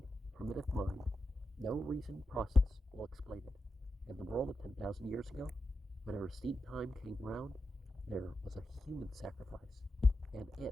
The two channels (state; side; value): normal; both; correlation 0.89